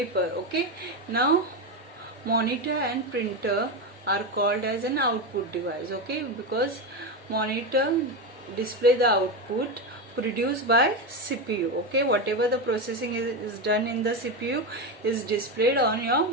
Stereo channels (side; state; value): both; normal; correlation 0.14